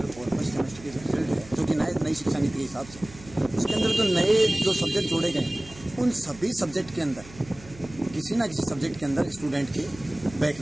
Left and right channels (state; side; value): noise; right; hum, 19 dB below the sound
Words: और 1st सेमेस्टर के रिजल्ट है, जो कि नई शिक्षा नीति के हिसाब से उसके अंदर जो नए जो सब्जेक्ट जोड़े गए, उन सभी सब्जेक्ट के अंदर किसी ना किसी सब्जेक्ट के अंदर स्टूडेंट के बैक